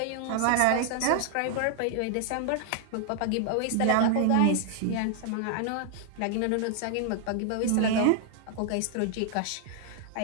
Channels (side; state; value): both; different; correlation 0.00